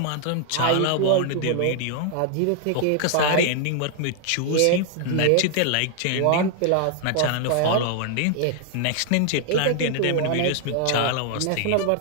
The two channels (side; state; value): both; different; correlation 0.00